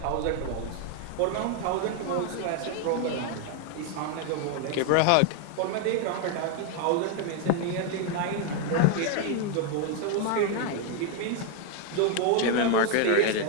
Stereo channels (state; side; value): different; both; correlation 0.01